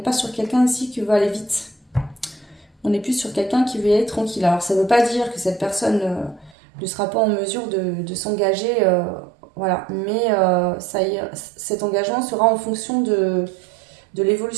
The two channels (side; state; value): left; drops out; at 6.6 s